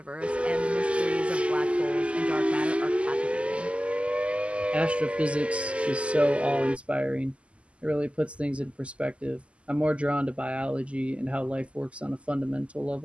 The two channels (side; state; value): left; late; 0.058 ms